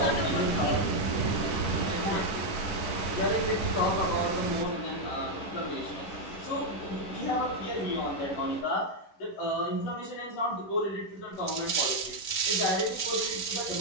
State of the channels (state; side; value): late; right; 11 ms